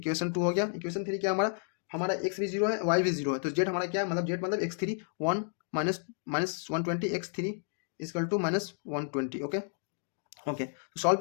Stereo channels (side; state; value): right; silent; 57 dB below the other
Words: 2 हो गया, इक्वेशन 3 क्या हमारा x भी जीरो है, y भी जीरो है, तो z हमारा क्या है, मतलब z मतलब x3 1 minus 120, x3 equal to minus 120। Okay okay, तो सॉल्व